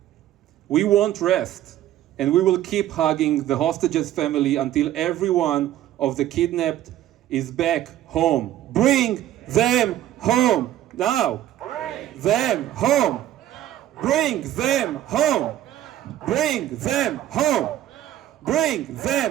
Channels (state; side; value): quieter; left; 12.8 dB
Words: We won't rest, and we will keep hugging the hostages' family until every one of the kidnapped is back home. Bring them home now. Bring them home. Bring them home. Bring them home. Bring